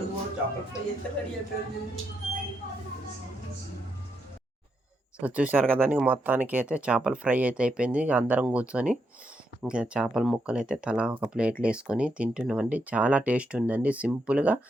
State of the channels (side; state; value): both; normal; correlation 0.80